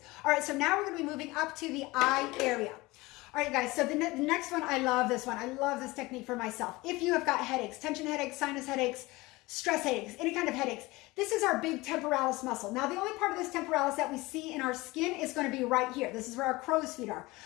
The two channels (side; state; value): right; quieter; 21.4 dB